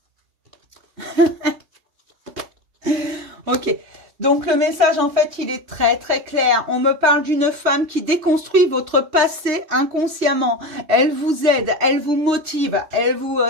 Ok. Donc, le message, en fait, il est très, très clair. On me parle d'une femme qui déconstruit votre passé inconsciemment. Elle vous aide. Elle vous motive. Elle vous...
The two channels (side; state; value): left; late; 3.2 ms